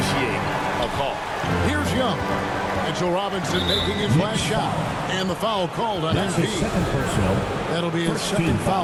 a call. Here's Young. Mitchell Robinson making his last shot. And the foul called on That's MP. his second personal. That'll be his second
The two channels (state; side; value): identical; both; correlation 1.00